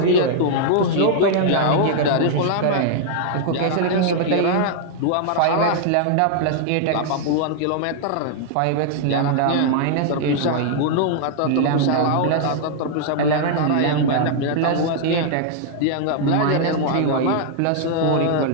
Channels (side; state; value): both; different; correlation -0.01